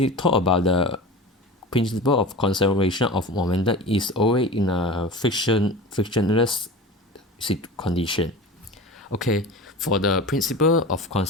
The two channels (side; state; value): both; normal; correlation 0.33